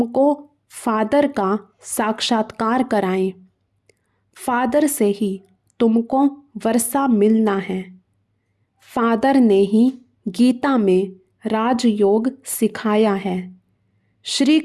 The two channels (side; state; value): both; identical; correlation 1.00